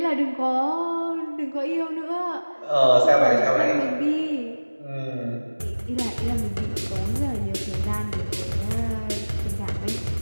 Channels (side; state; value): both; inverted; correlation -1.00